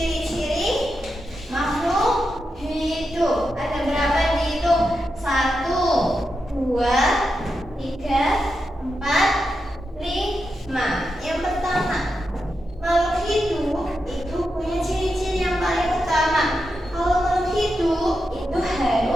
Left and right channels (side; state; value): both; normal; correlation 0.87